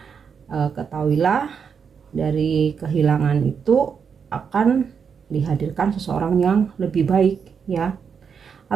ketahuilah dari kehilangan itu akan dihadirkan seseorang yang lebih baik ya.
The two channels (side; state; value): left; quieter; 6.6 dB